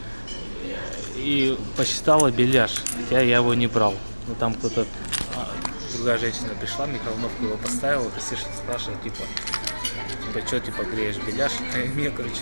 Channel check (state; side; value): inverted; both; correlation -1.00